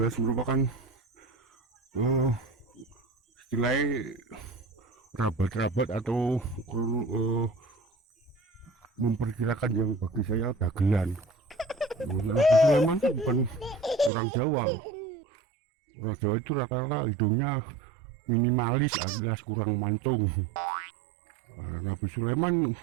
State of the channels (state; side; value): drops out; left; at 14.1 s